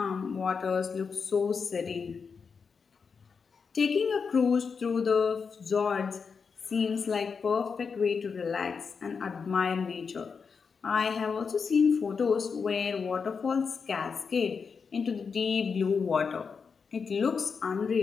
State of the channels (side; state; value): right; quieter; 5.6 dB